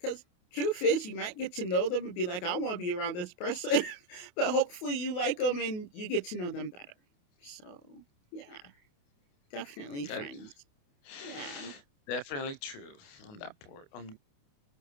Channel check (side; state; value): right; late; 28 ms